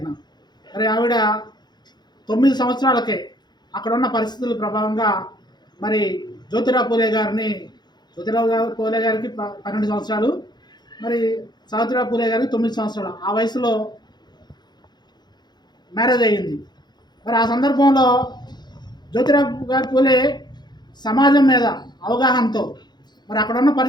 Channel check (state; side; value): late; right; 0.21 ms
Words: మరి ఆవిడ 9 సంవత్సరాలకే అక్కడున్న పరిస్థితుల ప్రభావంగా మరి జ్యోతిరావు పూలే గారికి 12 సంవత్సరాలు, మరి సావిత్రిబాయి పూలే గారికి 9 సంవత్సరాలు. ఆ వయసులో మ్యారేజ్ అయ్యింది. మరి ఆ సందర్భంలో జ్యోతిరావు పూలే సమాజం మీద అవగాహనతో మరి అక్కడున్న